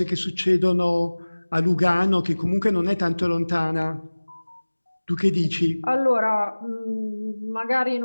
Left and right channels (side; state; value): both; inverted; correlation -1.00